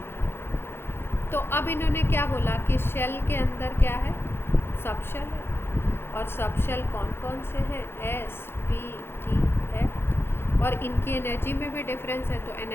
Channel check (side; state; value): right; late; 0.11 ms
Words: तो अब इन्होंने क्या बोला कि शेल के अंदर क्या है, सब शेल है, और सब शेल कौन कौन से हैं, एस, पी, टी, एफ, और इनकी एनर्जी में भी डिफरेंस है। तो